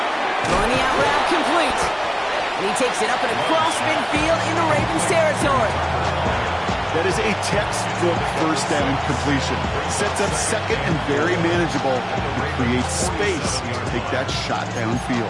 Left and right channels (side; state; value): both; identical; correlation 1.00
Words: Throwing the out route complete. And he takes it up and across midfield into Ravens territory. That is a textbook 1st down completion. Sets up 2nd and very manageable. It creates space to take that shot downfield.